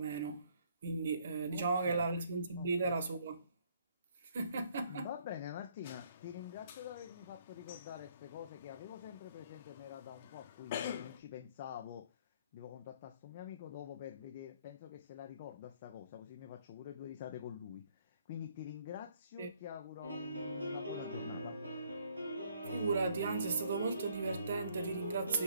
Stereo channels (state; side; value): inverted; both; correlation -0.65